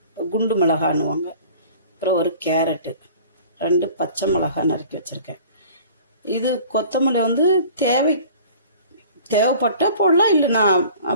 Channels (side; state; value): both; inverted; correlation -0.46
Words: குண்டு மிளகான்னுவாங்க. அப்புறம் ஒரு கேரட்டு, 2 பச்சை மிளகாய் நறுக்கி வச்சுருக்கேன். இது கொத்தமல்லி தேவைப்பட்டால் போடலாம், இல்லைனா